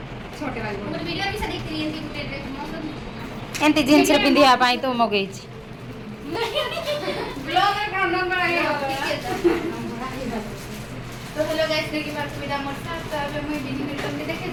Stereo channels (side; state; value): both; identical; correlation 1.00